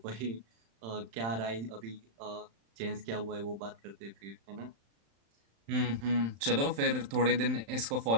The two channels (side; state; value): left; late; 35 ms